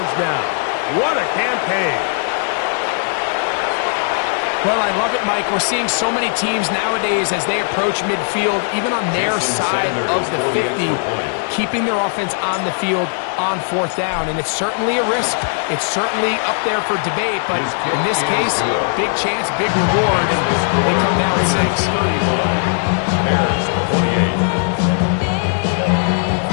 now. What a campaign. Well, I love it, Mike. We're seeing so many teams nowadays as they approach midfield, even on their side of the 50, keeping their offense on the field on 4th down. And it's certainly a risk. It's certainly up there for debate. But in this case, big chance, big reward, and they come down with 6. Bears 48.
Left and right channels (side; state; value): right; silent; 67 dB below the other